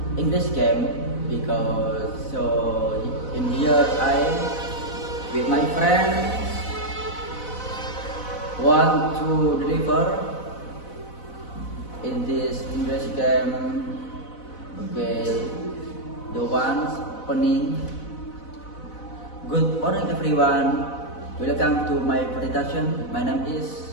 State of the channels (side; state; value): right; late; 4.0 ms